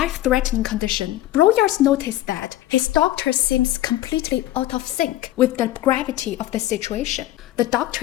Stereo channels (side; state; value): right; quieter; 14.6 dB